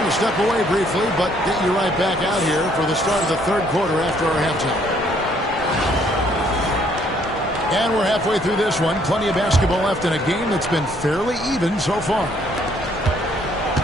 to step away briefly, but get you right back out here for the start of the third quarter after our halftime. And we're halfway through this one. Plenty of basketball left in a game that's been fairly even so far.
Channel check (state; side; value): normal; both; correlation 0.65